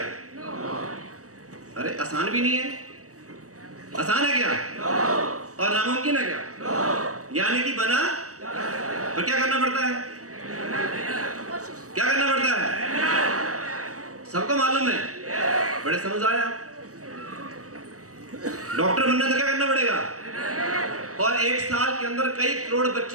अरे आसान भी नहीं है, आसान है क्या? और नामुमकिन है क्या? यानी कि बना तो क्या करना पड़ता है? क्या करना पड़ता है? सबको मालूम है, बड़े समझ आए आप। डॉक्टर बनना तो क्या करना पड़ेगा? और 1 साल के अंदर कई करोड़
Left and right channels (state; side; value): late; left; 0.66 ms